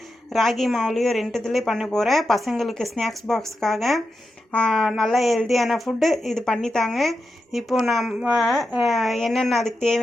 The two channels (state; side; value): normal; both; correlation 0.88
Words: ராகி மாவுலேயும் ரெண்டுத்துலேயும் பண்ண போகிறேன். பசங்களுக்கு ஸ்நாக்ஸ் பாக்ஸுக்காக நல்லா ஹெல்த்தியான ஃபுட்டு இது பண்ணித்தாங்க. இப்போது நம்ம என்னென்ன அதுக்கு